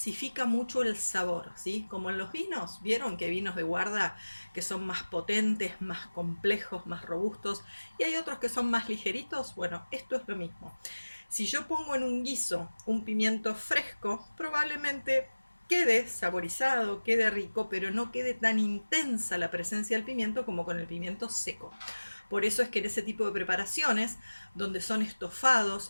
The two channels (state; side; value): inverted; both; correlation -1.00